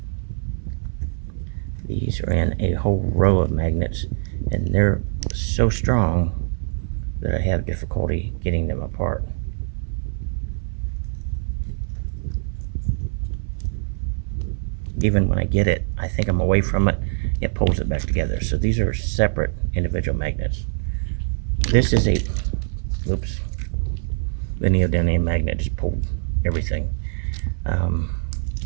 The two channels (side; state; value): left; silent; 60 dB below the other